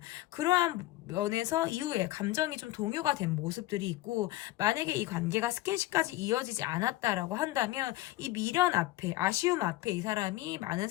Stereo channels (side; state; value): right; quieter; 17.2 dB